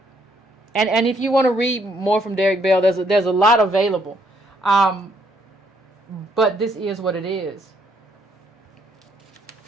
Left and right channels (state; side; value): normal; both; correlation 0.70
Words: And if you want to read more from Derek Bell, there's a lot available. But this is what it is.